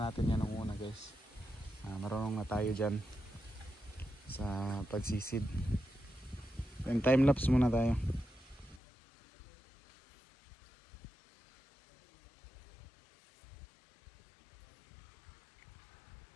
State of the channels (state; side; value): drops out; right; at 8.8 s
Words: natin yan nung una guys. Marunong na tayo dyan sa pagsisid. And time lapse muna tayo.